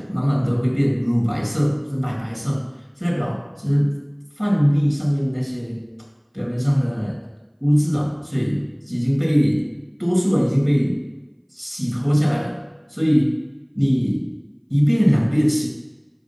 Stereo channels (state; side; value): identical; both; correlation 1.00